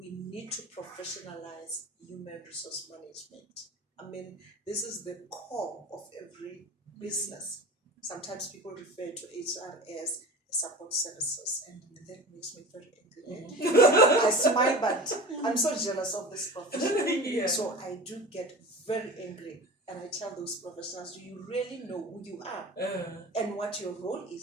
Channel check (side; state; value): both; normal; correlation 0.34